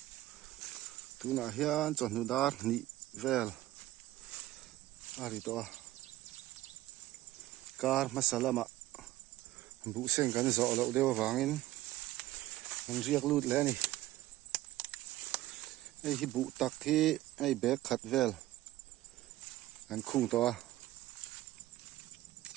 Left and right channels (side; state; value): left; quieter; 16.1 dB